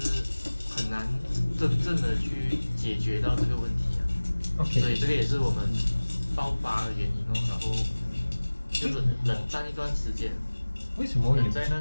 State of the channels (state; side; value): inverted; both; correlation -1.00